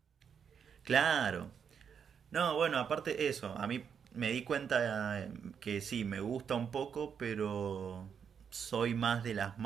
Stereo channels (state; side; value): quieter; left; 7.2 dB